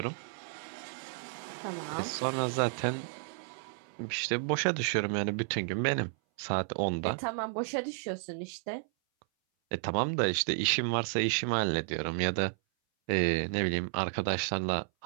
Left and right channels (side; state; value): left; silent; 56 dB below the other